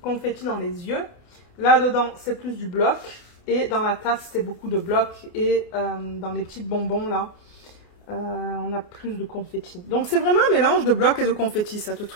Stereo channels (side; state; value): right; late; 28 ms